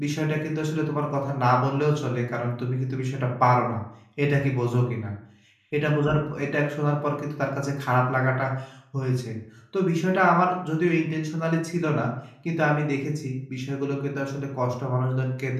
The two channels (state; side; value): identical; both; correlation 1.00